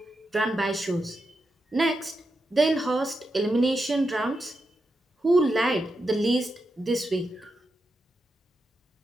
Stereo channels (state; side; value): normal; both; correlation 0.87